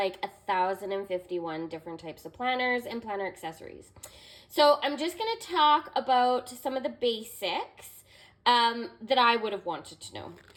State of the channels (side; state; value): both; identical; correlation 1.00